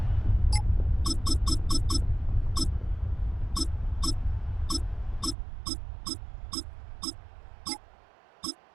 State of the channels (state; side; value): drops out; left; at 5.4 s